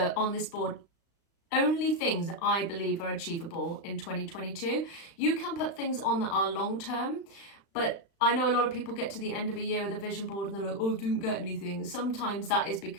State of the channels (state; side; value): late; right; 35 ms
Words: on this board only things that I believe are achievable in 2022. You can put things on that are long term, but I know a lot of people get to the end of a year with a vision board and they're like, oh, I didn't get anything. Sometimes that is